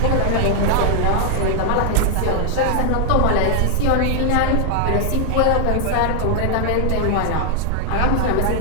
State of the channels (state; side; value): different; both; correlation 0.00